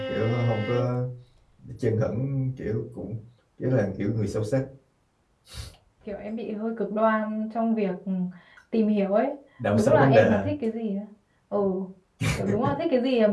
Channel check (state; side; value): identical; both; correlation 1.00